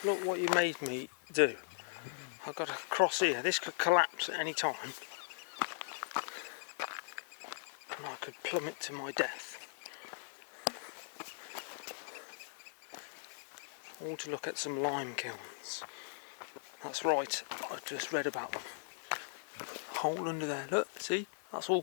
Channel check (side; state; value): right; silent; digital silence